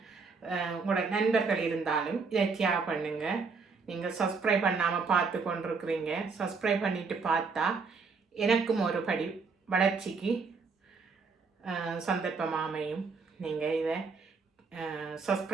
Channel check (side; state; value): left; quieter; 4.8 dB